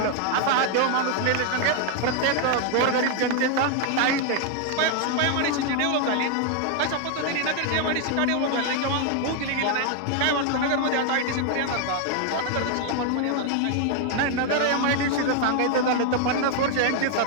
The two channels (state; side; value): different; both; correlation 0.00